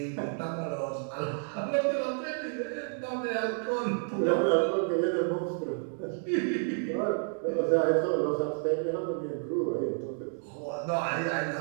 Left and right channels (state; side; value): silent; left; 58 dB below the other